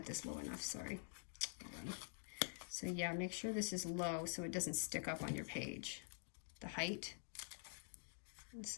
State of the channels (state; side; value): silent; right; digital silence